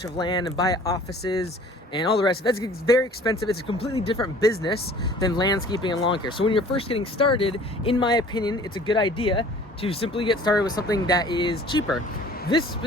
of land and buy offices and all the rest. That's very expensive. It's a completely different business than landscaping and lawn care. So when you're first getting started, in my opinion, it's a good idea to simply get started with something that is cheaper. This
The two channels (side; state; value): both; normal; correlation 0.49